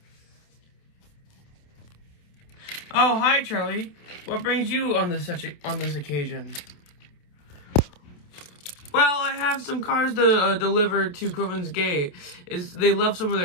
Oh, hi, Charlie. What brings you on this occasion? Well, I have some cars to deliver to Coven's Gate. They left some of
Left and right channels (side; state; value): right; late; 28 ms